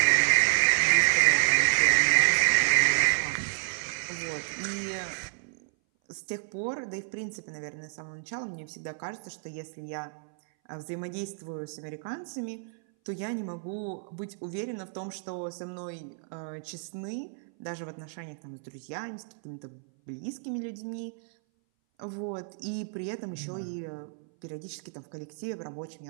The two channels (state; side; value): silent; left; 57 dB below the other